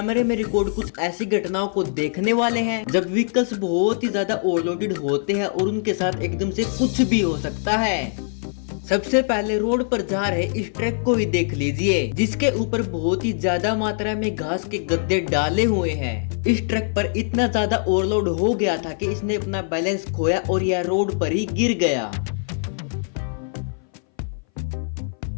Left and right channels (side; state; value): right; silent; 60 dB below the other